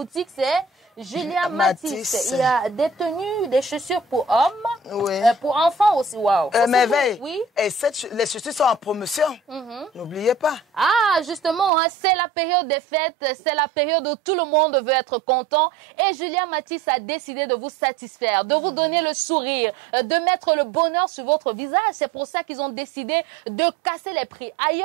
c'est Julia Matisse. Il y a des tenues, des chaussures pour hommes, pour enfants aussi. Waouh. Merveille. Oui. Et les chaussures sont en promotion. N'oubliez pas. Ah, justement, c'est la période des fêtes, c'est la période où tout le monde veut être content. Et Julia Matisse a décidé de vous satisfaire, de vous donner le sourire, de mettre le bonheur sur votre visage. C'est pour ça qu'ils ont décidé de casser les prix.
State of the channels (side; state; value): left; drops out; at 11.7 s